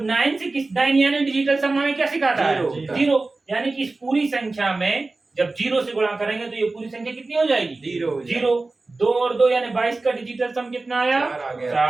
9 से 9 यानी डिजिटल सम हमें क्या सिखाता है? 0। यानी कि इस पूरी संख्या में जब 0 से गुणा करेंगे तो ये पूरी संख्या कितनी हो जाएगी? 0। 2 और 2 यानी 22 का डिजिटल सम कितना आया?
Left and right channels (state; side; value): quieter; left; 3.4 dB